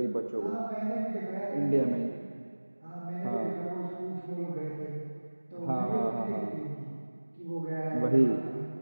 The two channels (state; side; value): inverted; both; correlation -1.00